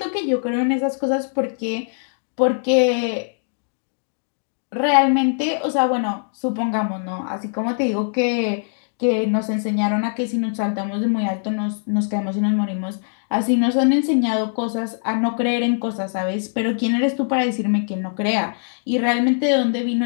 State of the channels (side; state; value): right; silent; digital silence